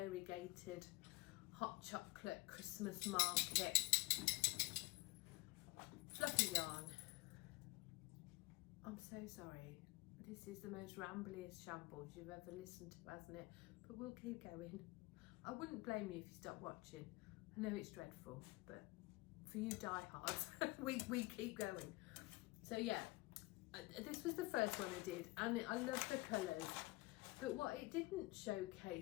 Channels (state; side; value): quieter; right; 22.1 dB